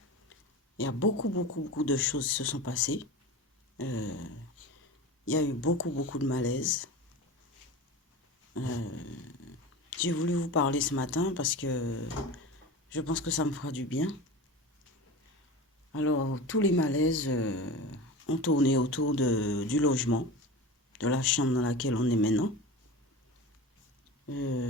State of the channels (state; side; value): normal; both; correlation 0.31